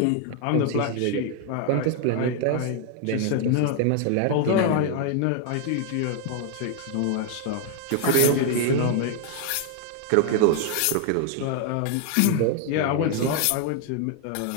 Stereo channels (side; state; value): both; different; correlation 0.00